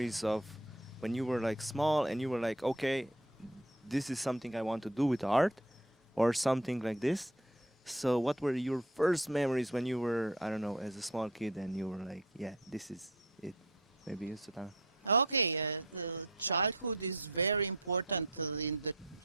of when you were like small and you were like, okay, this is something I want to do with art, or something like this? So, what were your first memories when you were, I don't know, as a small kid, and you were like, yeah, this is it? Maybe you, Sultana. Okay, the childhood is very important. In the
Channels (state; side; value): normal; both; correlation 0.46